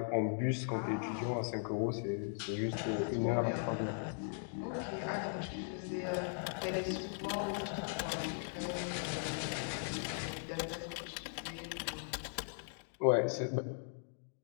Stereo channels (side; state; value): right; silent; digital silence